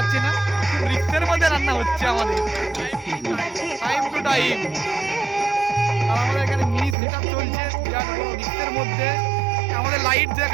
না, রিক্সের মধ্যে রান্না হচ্ছে আমাদের, টাইম টু টাইম। আর আমাদের এখানে মিনি সেট আপ চলছে বিরাট বড় রিক্সের মধ্যে। আমাদের লাইট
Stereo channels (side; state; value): left; drops out; at 7.0 s